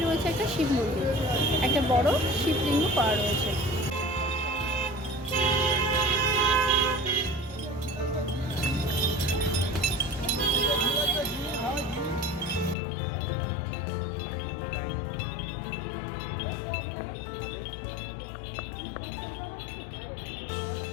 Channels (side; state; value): right; drops out; at 12.8 s